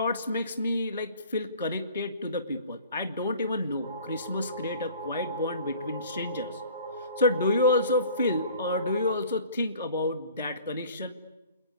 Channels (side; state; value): both; inverted; correlation -0.48